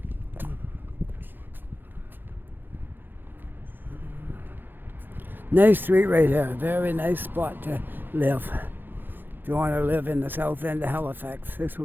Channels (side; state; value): left; late; 0.094 ms